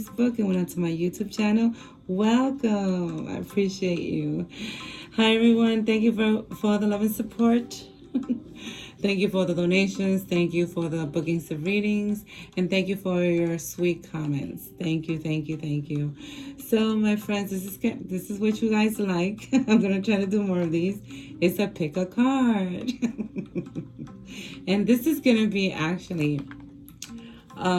and went onto my YouTube channel, welcome. I appreciate you. Hi everyone, thank you for all the love and support. Thank you for the donations. Thank you for the bookings of readings. And thank you for your sweet comments. Thank you, thank you, thank you. So, my friends, this is what you guys like. I'm going to try to do more of these. It's a pick a card. And this is going to be actually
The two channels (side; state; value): both; identical; correlation 1.00